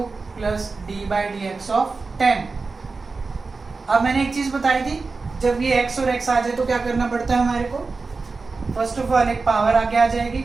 plus d by D x of 10। अब मैंने एक चीज़ बताई थी, जब ये x और x आ जाए तो क्या करना पड़ता है हमारे को, फर्स्ट ऑफ ऑल एक पावर आगे आ जाएगी,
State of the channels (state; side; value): quieter; left; 4.1 dB